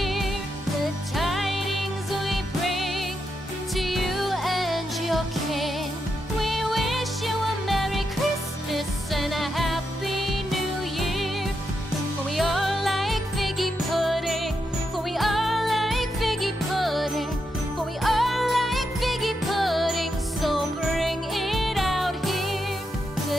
The tidings we bring to you and your kin. We wish you a Merry Christmas and a Happy New Year. For we all like figgy pudding. For we all like figgy pudding. For we all like figgy pudding. So bring it out here.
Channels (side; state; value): both; normal; correlation 0.84